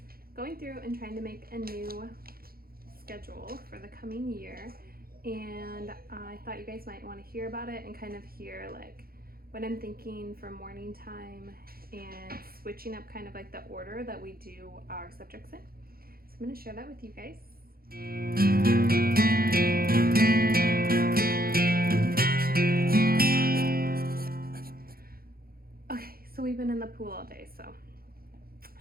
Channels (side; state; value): left; late; 0.43 ms